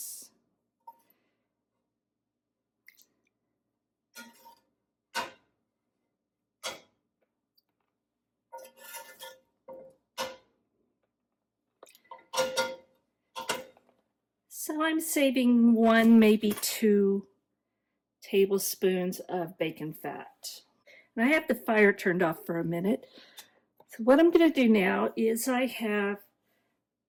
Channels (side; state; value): both; identical; correlation 1.00